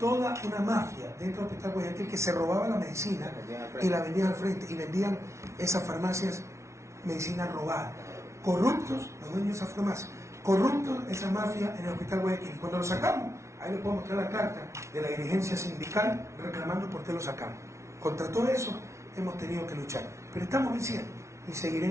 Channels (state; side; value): late; left; 0.13 ms